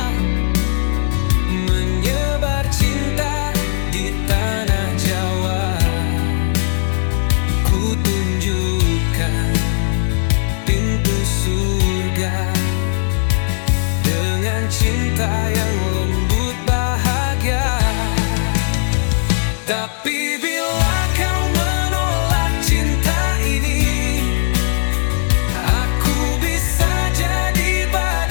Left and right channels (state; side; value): silent; right; digital silence